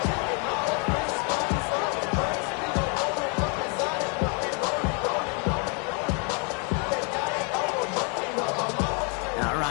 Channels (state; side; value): quieter; right; 36.3 dB